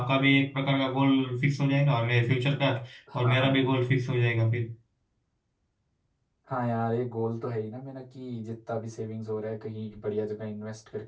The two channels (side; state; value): both; identical; correlation 1.00